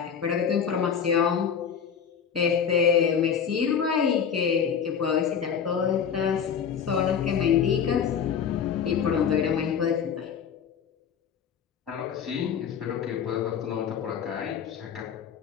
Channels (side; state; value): right; quieter; 7.4 dB